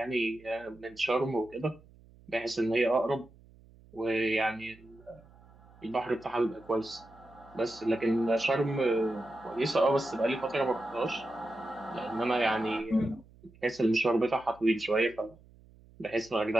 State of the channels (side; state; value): right; noise; hum, 25 dB below the sound